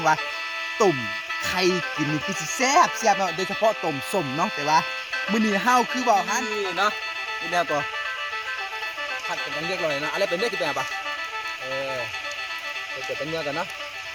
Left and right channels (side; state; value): both; identical; correlation 1.00